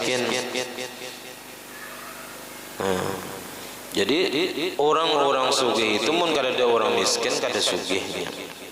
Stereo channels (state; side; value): identical; both; correlation 1.00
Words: Jadi orang-orang sugih itu mun kada ada orang miskin kada sugihnya,